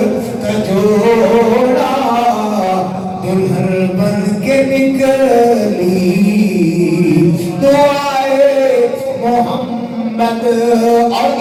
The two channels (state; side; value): identical; both; correlation 1.00